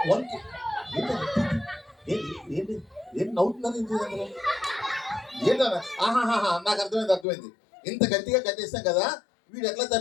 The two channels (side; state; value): right; drops out; at 7.2 s